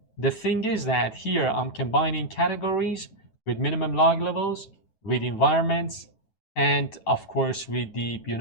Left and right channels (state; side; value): late; right; 9.2 ms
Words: the thing is that here I'm combining categories with minimum log levels, with environments, and of course with the,